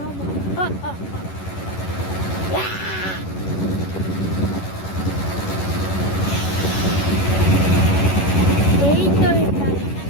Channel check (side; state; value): right; late; 11 ms